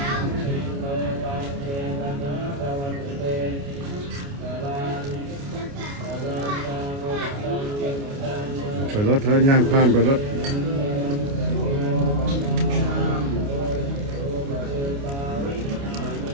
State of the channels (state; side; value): late; left; 29 ms